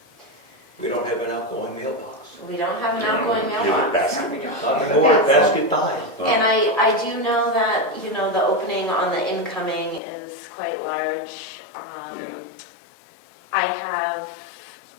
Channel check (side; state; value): right; drops out; at 10.0 s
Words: We don't have an outgoing mailbox. We don't have an Yeah, outgoing give it mailbox. basket. No, we don't. Not It's a anymore, basket. basket died. And I do know that, the opening on the incoming is quite large. Yeah. I have